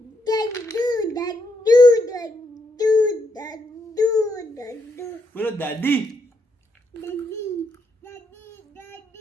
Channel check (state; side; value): normal; both; correlation 0.78